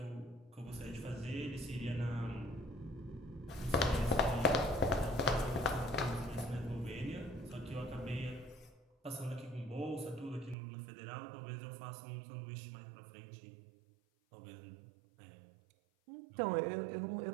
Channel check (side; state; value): left; drops out; at 10.6 s